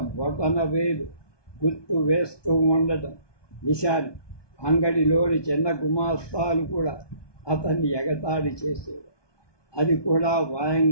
బొటన వేలు గుర్తు వేస్తూ ఉండటం నిశాని. అంగడిలోని చిన్న గుమాస్తాలు కూడా అతన్ని ఎగతాళి చేసేవారు. అది కూడా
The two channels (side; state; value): right; late; 1.2 ms